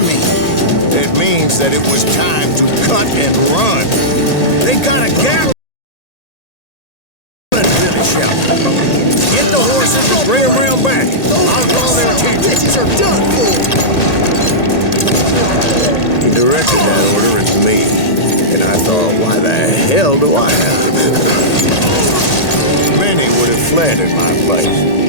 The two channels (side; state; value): right; late; 1.8 ms